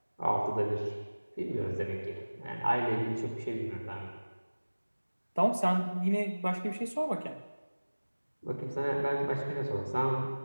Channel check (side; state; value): both; inverted; correlation -1.00